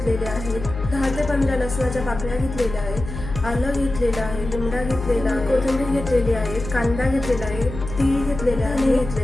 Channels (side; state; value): left; noise; hum, 9 dB below the sound